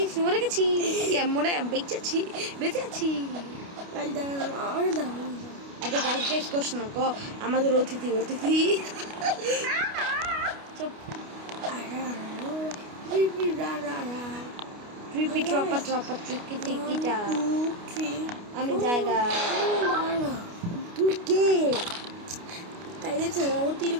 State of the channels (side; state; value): left; late; 29 ms